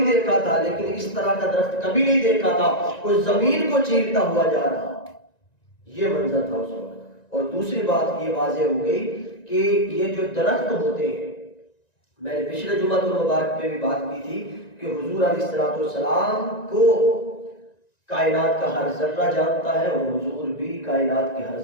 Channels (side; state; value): right; late; 1.9 ms